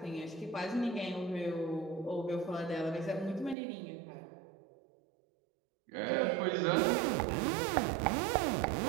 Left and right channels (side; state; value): left; drops out; at 3.6 s